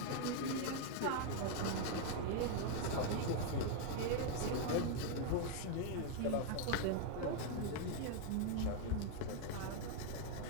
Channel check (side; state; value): both; different; correlation 0.00